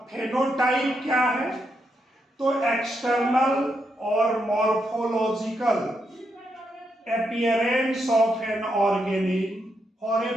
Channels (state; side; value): normal; both; correlation 0.81